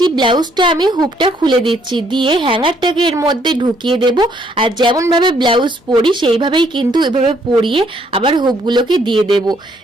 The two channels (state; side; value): normal; both; correlation 0.68